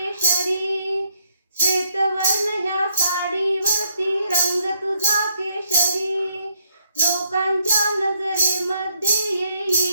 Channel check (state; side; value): inverted; both; correlation -0.72